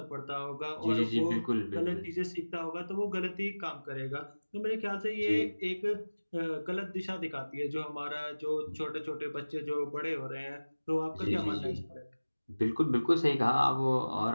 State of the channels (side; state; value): both; inverted; correlation -1.00